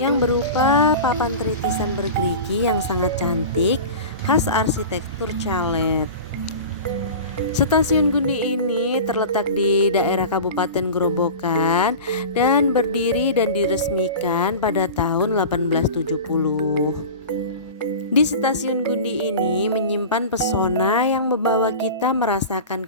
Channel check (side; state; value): both; inverted; correlation -0.33